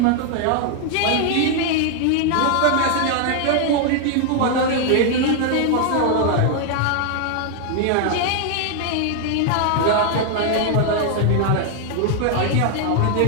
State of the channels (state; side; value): different; both; correlation 0.00